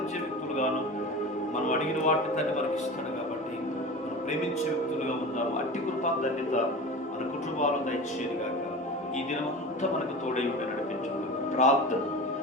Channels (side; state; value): both; normal; correlation 0.32